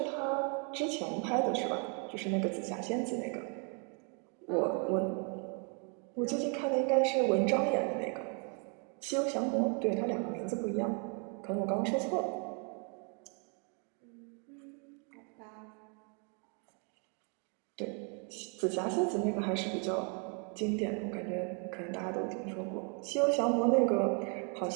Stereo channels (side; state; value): left; quieter; 37.8 dB